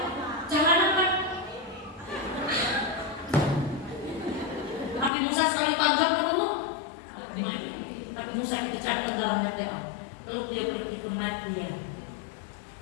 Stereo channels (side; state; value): right; drops out; at 5.1 s